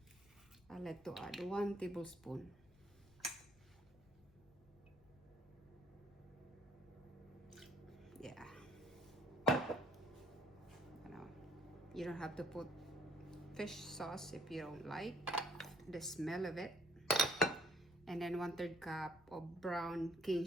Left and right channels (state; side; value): noise; left; rumble, 25 dB below the sound